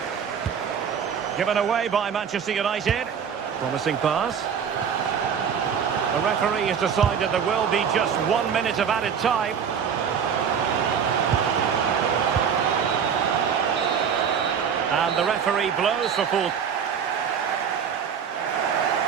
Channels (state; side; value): quieter; left; 7.4 dB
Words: Given away by Manchester United. Promising pass. The referee has decided there will be just 1 minute of added time. And the referee blows for full.